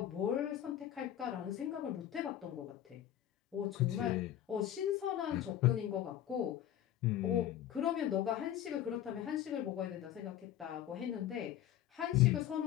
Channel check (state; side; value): quieter; right; 11.5 dB